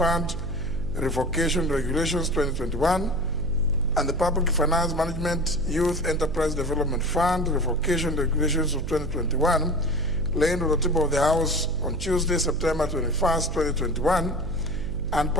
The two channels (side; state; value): right; noise; hum, 6 dB below the sound